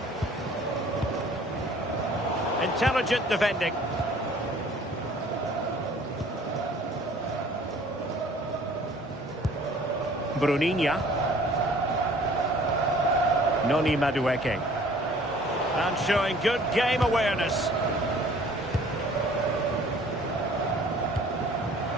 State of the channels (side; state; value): both; normal; correlation 0.53